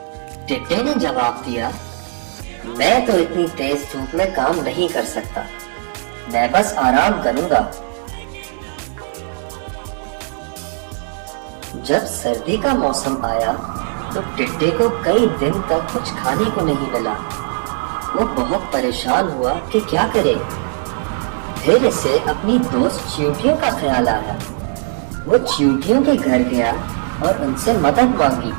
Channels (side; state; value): left; silent; digital silence